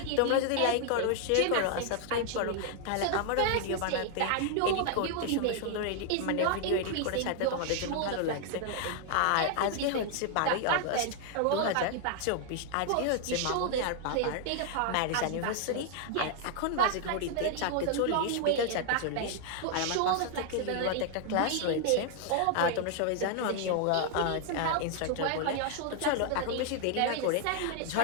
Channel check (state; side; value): different; both; correlation 0.00